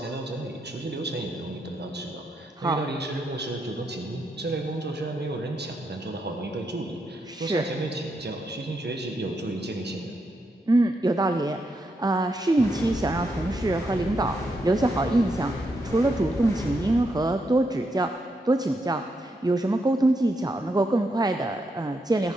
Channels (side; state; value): both; normal; correlation 0.81